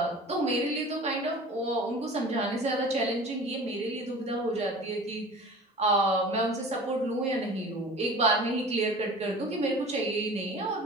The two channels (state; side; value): normal; both; correlation 0.40